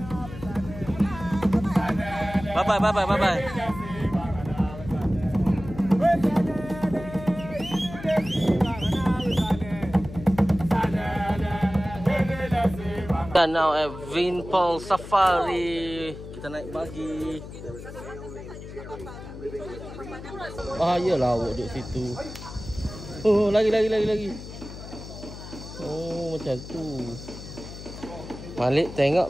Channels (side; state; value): left; noise; hum, 12 dB below the sound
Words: Bye-bye. Kita now at Vinpearl Safari. Kita naik buggy. Bahayalah awak duduk situ. Oh, lagi. Oh, macam tu. Malik